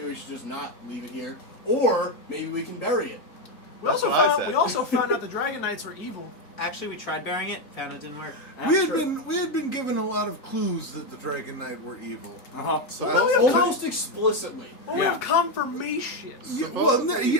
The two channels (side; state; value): right; late; 3.8 ms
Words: we should just not leave it here, or maybe we can bury it. That's what I said. We also found out the Dragon Knights were evil. Actually, we tried burying it, found it didn't work. We had been given a lot of clues that the Dragon Knight were evil. Uh-huh. Almost explicitly. Well, Yeah. we have confirmation. Yeah, well,